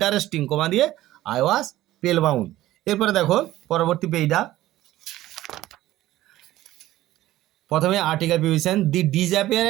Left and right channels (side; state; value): left; quieter; 15.3 dB